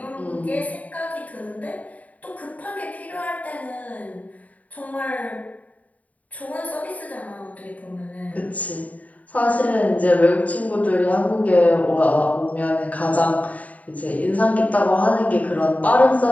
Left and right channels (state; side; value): late; right; 0.071 ms